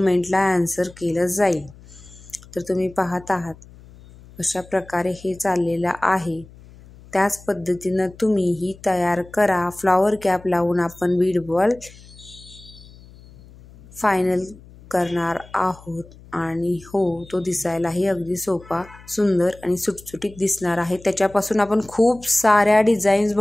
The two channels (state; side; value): noise; left; hum, 22 dB below the sound